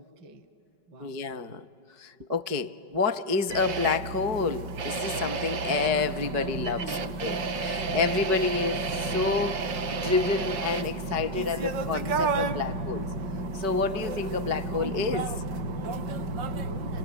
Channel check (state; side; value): late; left; 5.2 ms